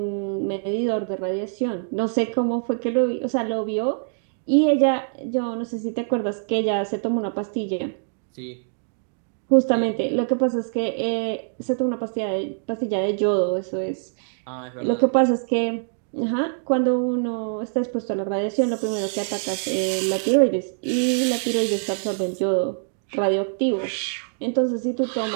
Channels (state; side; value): silent; left; digital silence